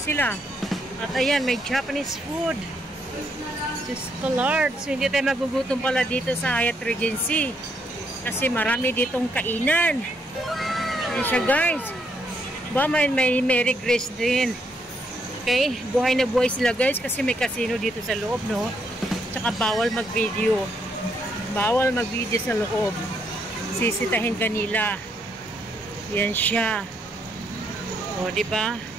sila. At ayan, may Japanese food. Just colored. So, hindi tayo magugutom pala dito sa Hyatt Regency. Kasi marami ditong kainan. Yan siya, guys. Ba, may Mary Grace din. Okay? Buhay na buhay sila, guys. Kasi may casino dito sa loob, no? Tsaka bawal mag-video. Bawal mag-video sa loob. Sisitahin kanila. Yan siya. O, diba?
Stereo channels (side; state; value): both; normal; correlation 0.74